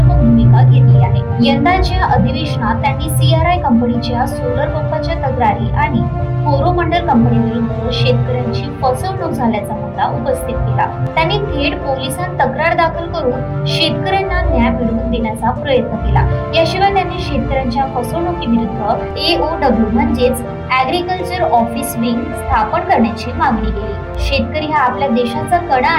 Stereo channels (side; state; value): both; identical; correlation 1.00